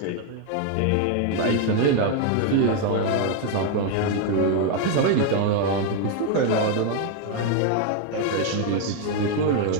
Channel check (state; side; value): different; both; correlation 0.01